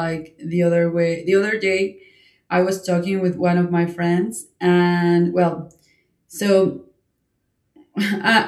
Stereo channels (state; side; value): identical; both; correlation 1.00